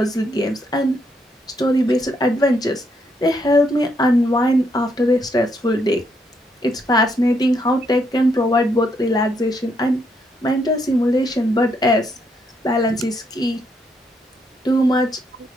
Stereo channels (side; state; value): both; normal; correlation 0.75